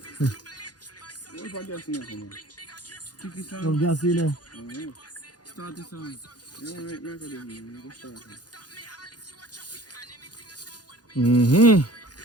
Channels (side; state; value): right; late; 0.69 ms